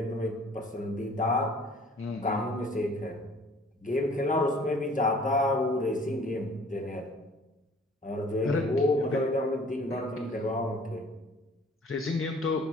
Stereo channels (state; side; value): normal; both; correlation 0.52